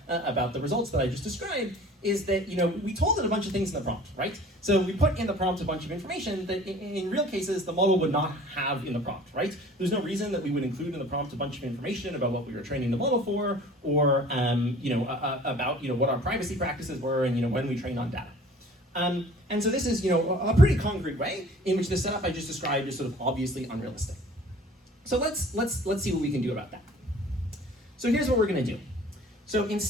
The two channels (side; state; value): both; normal; correlation 0.48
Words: about the results that I just described is that, we told it a bunch of things in the prompt, right? So we put in the prompt a bunch of information that in real cases the model would not have in the prompt, right? There's no reason that we would include in the prompt a bunch of information about what we were training the model for, or, about, what our privacy practices were and, when we trained on data. And so this is, a pretty concrete way in which the setup I just described is sort of obviously unrealistic. So let's see what we can do about that. So here's what we're going to do. So